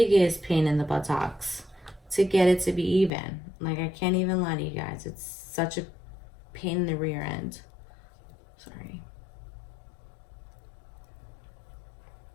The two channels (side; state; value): right; drops out; at 3.1 s